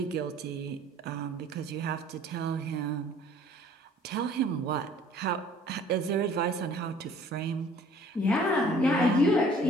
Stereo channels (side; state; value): both; normal; correlation 0.54